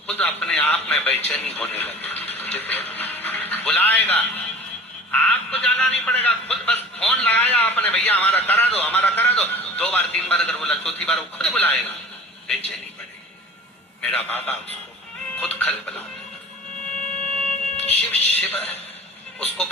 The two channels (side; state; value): both; normal; correlation 0.42